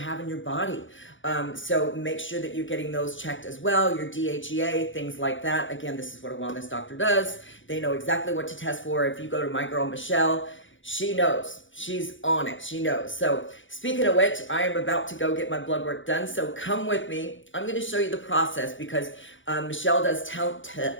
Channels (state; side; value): late; right; 0.56 ms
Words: in your body. So make sure that you're getting those checked as well. Your DHEA, things like that. Again, this is what a wellness doctor does. They know exactly what to test for. If you go to my girl, Michelle, she knows. She's on it. She knows. So speaking of which, I am about to go get my blood work done. So come with me. I'm going to show you the process, because Michelle does